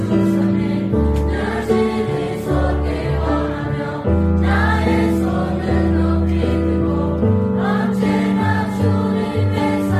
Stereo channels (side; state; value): both; identical; correlation 1.00